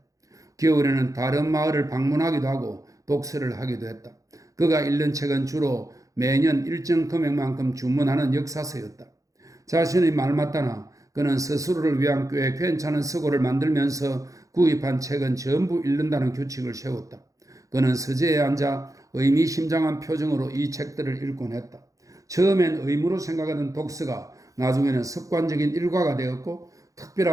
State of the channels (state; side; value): late; left; 0.16 ms